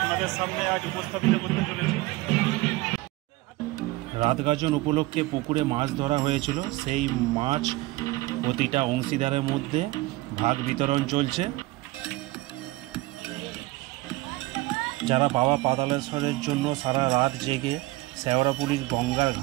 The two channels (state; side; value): quieter; left; 20.0 dB